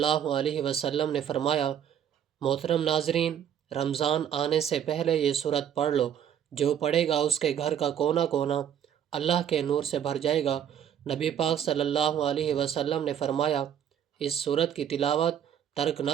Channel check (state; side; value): quieter; left; 9.2 dB